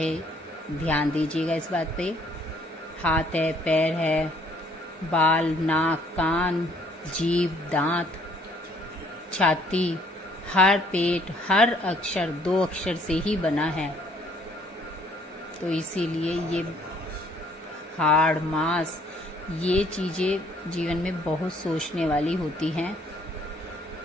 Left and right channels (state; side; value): normal; both; correlation 0.63